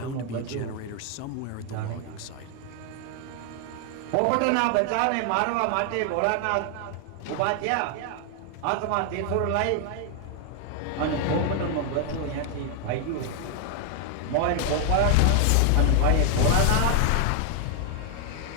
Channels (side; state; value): both; different; correlation 0.00